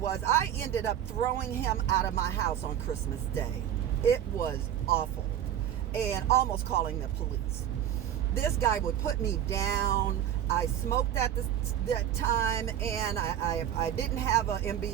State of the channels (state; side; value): quieter; left; 10.3 dB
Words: was I ended up throwing him out of my house on Christmas Day. It was awful, and almost calling the police. This guy would put me down. I smoked at that time, and I didn't have an